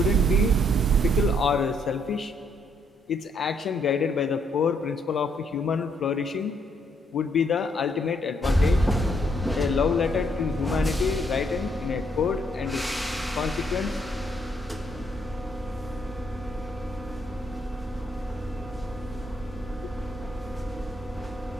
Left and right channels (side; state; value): both; normal; correlation 0.72